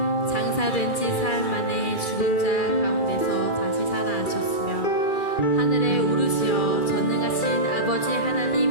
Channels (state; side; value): late; right; 2.4 ms